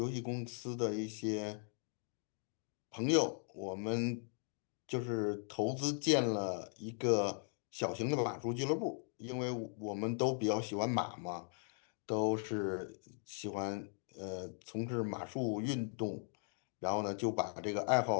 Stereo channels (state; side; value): silent; right; 52 dB below the other